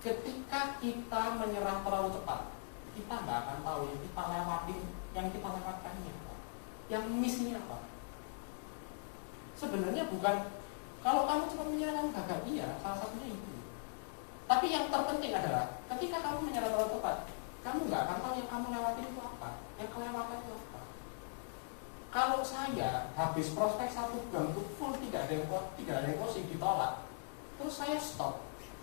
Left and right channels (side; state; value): right; silent; digital silence